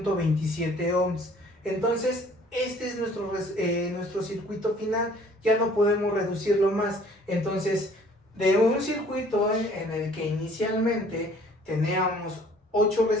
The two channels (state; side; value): normal; both; correlation 0.55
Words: ohms. Entonces este es nuestro circuito final, ya no podemos reducirlo más. Entonces, de un circuito en el que inicialmente teníamos 8